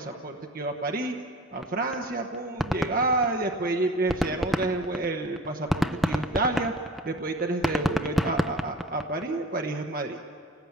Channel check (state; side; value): normal; both; correlation 0.40